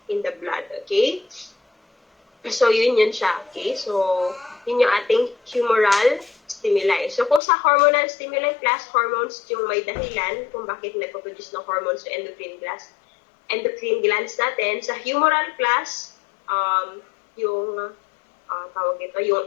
in the blood, okay? So, yun siya, okay? So, yun yung ating humoral stimuli. So, kung sa hormonal stimuli class, hormones yung may dahilan kung bakit nagpo-produce ng hormones sa endocrine glands natin. Sa humoral class, yung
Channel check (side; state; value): right; drops out; at 7.4 s